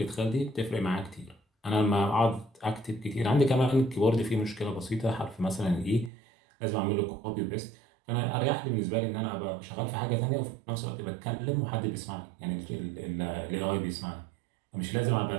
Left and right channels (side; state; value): left; drops out; at 6.1 s